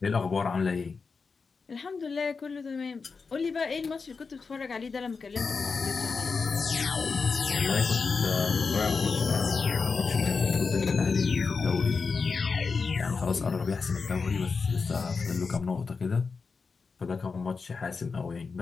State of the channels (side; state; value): right; quieter; 4.9 dB